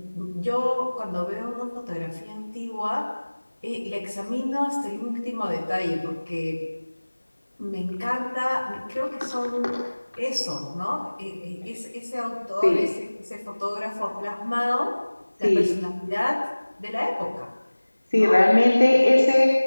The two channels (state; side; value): inverted; both; correlation -1.00